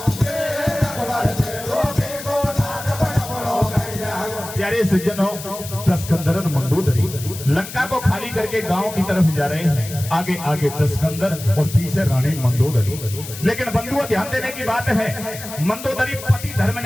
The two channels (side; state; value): left; noise; hiss, 12 dB below the sound